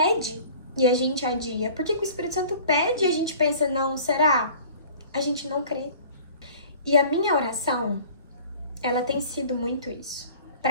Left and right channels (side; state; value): both; inverted; correlation -0.47